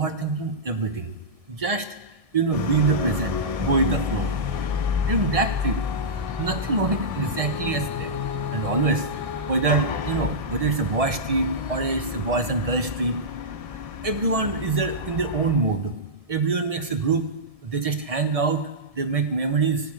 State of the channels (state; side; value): late; left; 1.7 ms